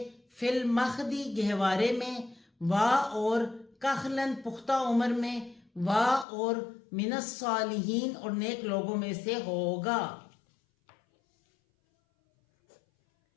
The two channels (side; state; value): right; drops out; at 6.2 s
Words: فی المخدی گہوارے میں وا اور کخلن پختہ عمر میں وا اور من الصالحین اور نیک لوگوں میں سے ہوگا.